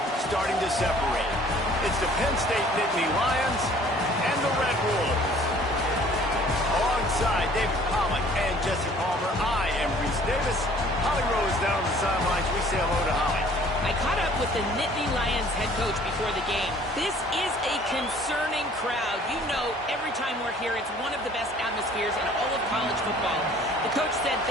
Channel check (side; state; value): both; normal; correlation 0.54